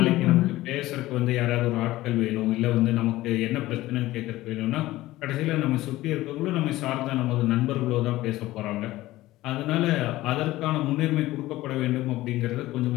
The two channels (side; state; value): right; quieter; 16.9 dB